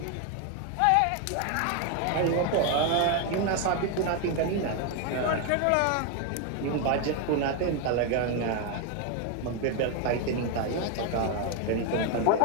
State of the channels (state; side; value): different; both; correlation 0.01